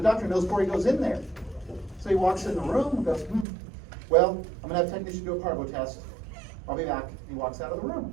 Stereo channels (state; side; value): drops out; left; at 3.5 s